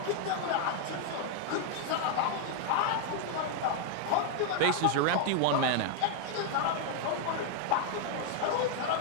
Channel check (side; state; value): both; different; correlation 0.00